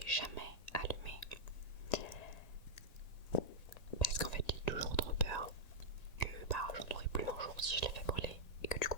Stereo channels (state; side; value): late; right; 1.9 ms